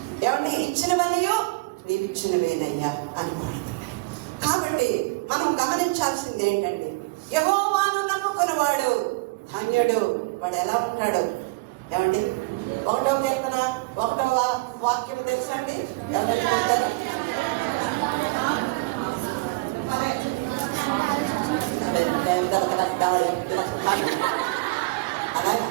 ఏమంటే ఇచ్చినవన్నీ నీవు ఇచ్చినవేనయ్యా అని పాడుతున్నాడు. కాబట్టి మనం గమనించాల్సింది ఏంటంటే, యెహోవాను నమ్ముకున్నవాడు ధన్యుడు. వాడు ఎలా ఉంటాడు? ఏమండి, 1వ కీర్తన 1వ వాక్యం తెలుసండి? అలా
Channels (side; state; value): left; quieter; 25.1 dB